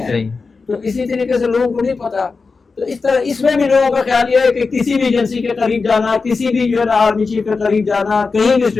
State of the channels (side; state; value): right; quieter; 4.4 dB